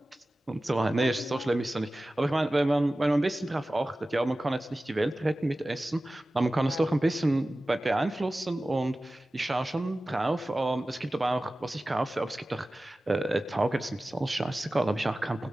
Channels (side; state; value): both; normal; correlation 0.96